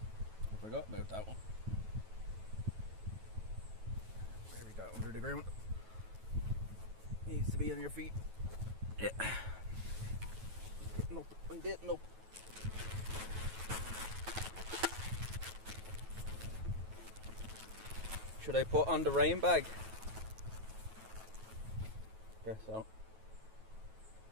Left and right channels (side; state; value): left; late; 9.2 ms